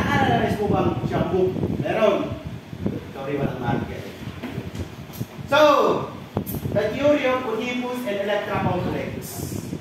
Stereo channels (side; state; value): both; identical; correlation 1.00